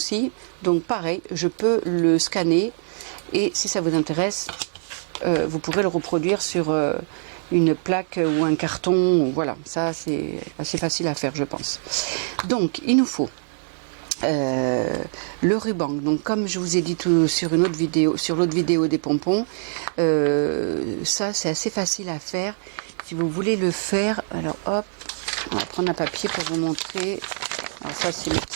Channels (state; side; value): silent; left; digital silence